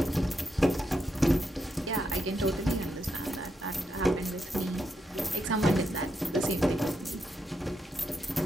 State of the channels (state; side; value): normal; both; correlation 0.82